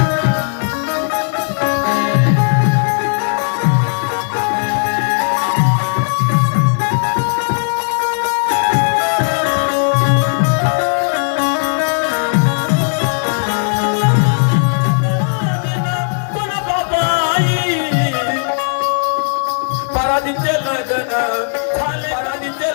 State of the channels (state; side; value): silent; right; digital silence